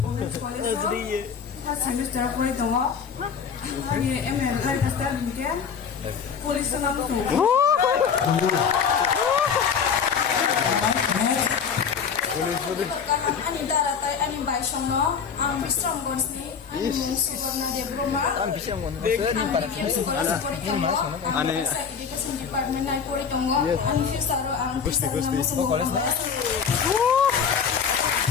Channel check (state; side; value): quieter; right; 6.6 dB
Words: Semester ko ito mo. Ani ML ay basta din police na lang ko. Ani daratay ani baisong no. Ang bisang gons ni ani mong support na Debroma. Ang bisang mo sir para sa ani sa education department na ko ito mo. Ani fisaro ang fisaro na mo college na.